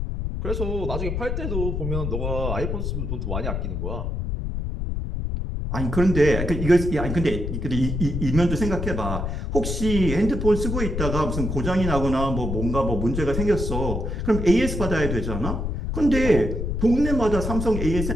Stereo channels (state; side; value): noise; left; rumble, 2 dB below the sound